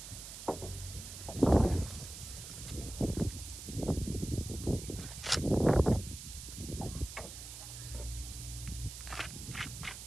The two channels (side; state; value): right; noise; hiss, 11 dB below the sound